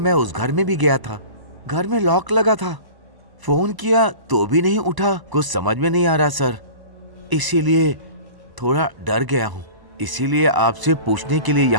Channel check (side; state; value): left; late; 1.0 ms